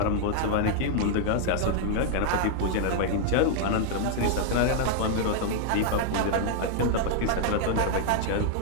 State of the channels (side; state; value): both; different; correlation 0.00